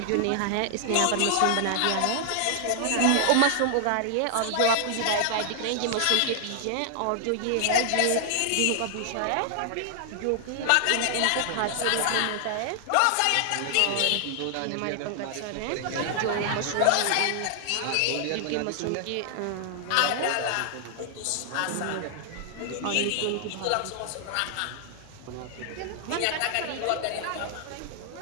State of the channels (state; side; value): different; both; correlation -0.01